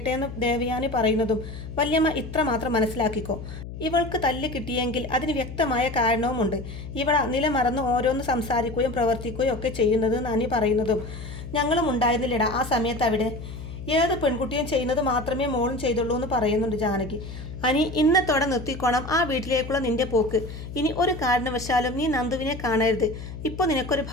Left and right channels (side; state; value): left; noise; hum, 10 dB below the sound